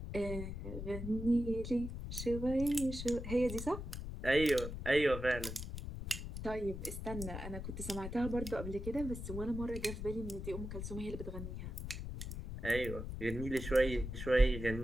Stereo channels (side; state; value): left; noise; rumble, 7 dB below the sound